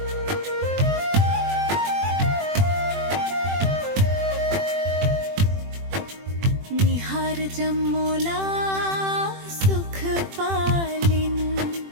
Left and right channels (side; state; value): left; late; 21 ms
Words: निहार जमोला सुख पालिन